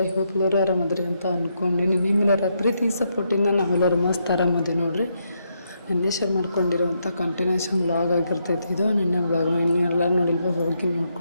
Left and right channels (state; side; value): inverted; both; correlation -0.79